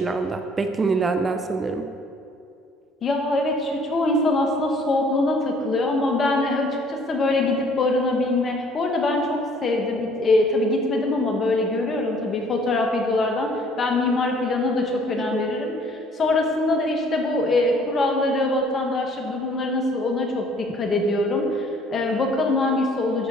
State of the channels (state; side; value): normal; both; correlation 0.58